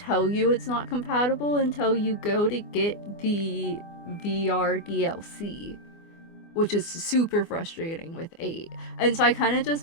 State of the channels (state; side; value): late; right; 24 ms